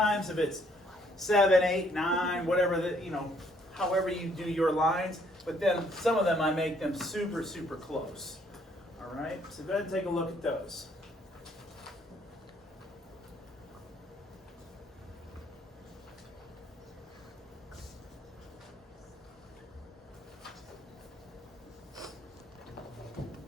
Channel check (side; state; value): both; normal; correlation 0.66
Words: if it's 7, 8, 9, whatever, however you do your lines, but then some of them I make them super, super close. All right, so go ahead and take a look at those.